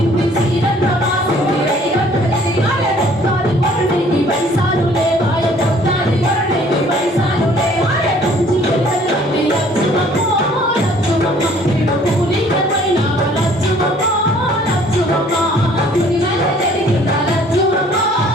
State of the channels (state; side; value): normal; both; correlation 0.57